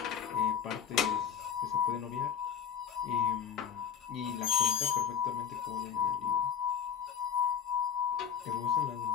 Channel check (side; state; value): right; quieter; 8.1 dB